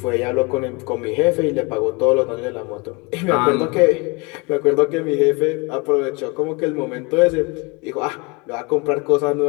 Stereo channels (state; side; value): quieter; right; 27.3 dB